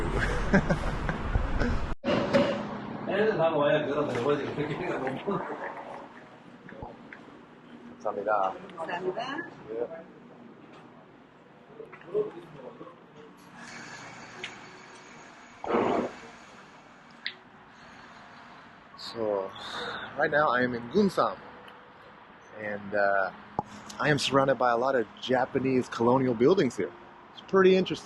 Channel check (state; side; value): identical; both; correlation 1.00